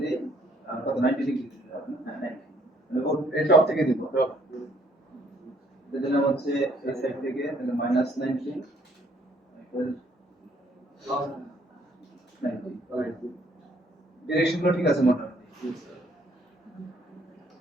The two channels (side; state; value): both; normal; correlation 0.64